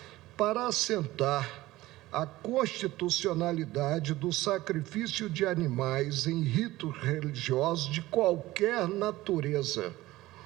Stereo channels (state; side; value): quieter; left; 17.6 dB